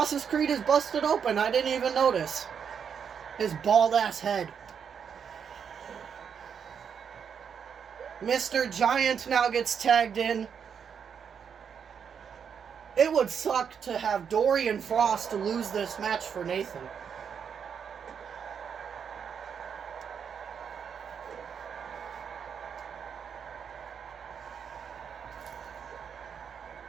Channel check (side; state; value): left; quieter; 7.2 dB